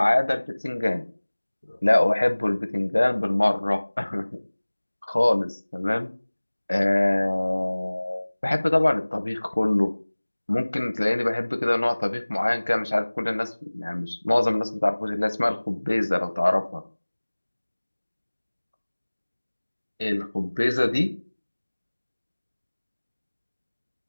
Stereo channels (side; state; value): both; inverted; correlation -1.00